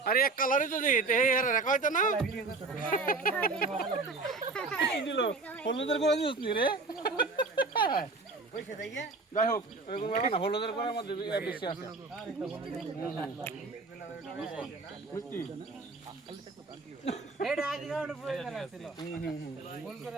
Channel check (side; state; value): left; quieter; 3.8 dB